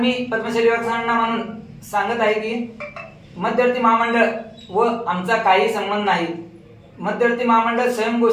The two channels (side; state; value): both; identical; correlation 1.00